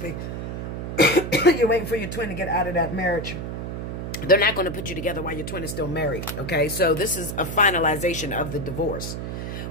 You're waiting for your twin to get out of that marriage. They're not going to put you together while your twin is still married, okay? So this is a finalization of the divorce.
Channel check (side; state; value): right; noise; hum, 5 dB below the sound